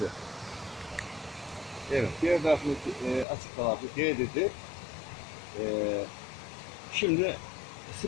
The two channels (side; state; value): right; drops out; at 3.2 s